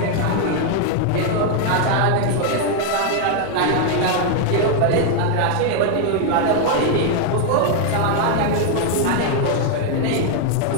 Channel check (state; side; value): different; both; correlation 0.00